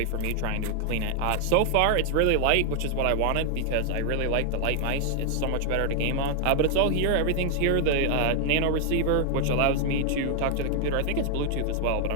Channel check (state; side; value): different; both; correlation 0.00